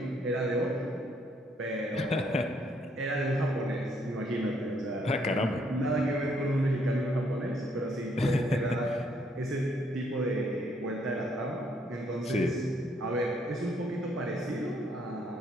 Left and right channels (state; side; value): normal; both; correlation 0.70